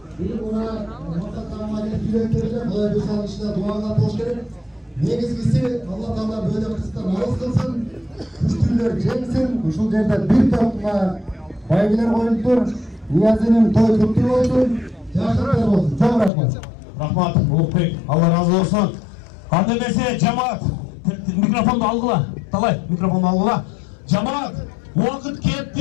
Bir buna mutlaka yüreklerine böyle bir çalışta dualar hoş gelir. Negizgisi Allah Teala böyle kısıttan ağız kılsın. Güçlüler geçsin. Uşul yerde bir topla baygiler koyuldur. Niyazi'nin toy kutlu olsun. Yaşlıklar olsun. Çok rahmat. Rahmat, Ulukbek. Allah razı olsun. Kademesi cemaat. Mikrofonu algıla. Talay, mikrofonu algıla. Cemaat. Vakit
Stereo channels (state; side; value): drops out; right; at 16.3 s